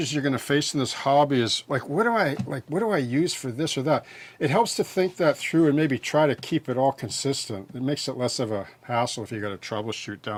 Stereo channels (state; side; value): identical; both; correlation 1.00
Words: you're going to face in this hobby is like, what do I use for this or that? It helps to think that through and maybe try to keep it all consistent. It makes it less of a hassle if you got to troubleshoot